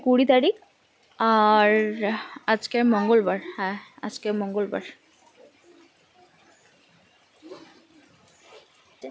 20 তারিখ, আর আজকে মঙ্গলবার। হ্যাঁ, আজকে মঙ্গলবার।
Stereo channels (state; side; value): identical; both; correlation 1.00